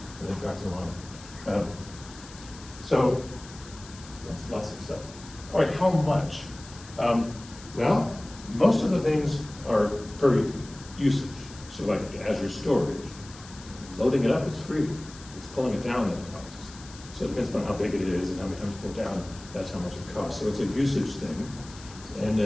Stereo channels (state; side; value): noise; left; hiss, 18 dB below the sound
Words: and it drives along. So that's lots of stuff. All right, how much? Well, most of the things are per usage. So like Azure storage, loading it up is free. It's pulling it down that costs. So it depends on how big it is and how many times you pull down, that's how much it costs. So it's a usage thing.